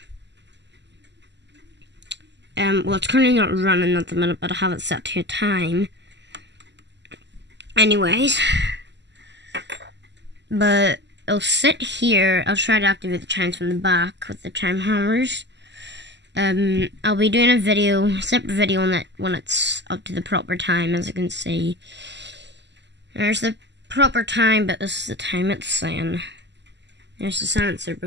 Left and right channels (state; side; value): late; left; 0.51 ms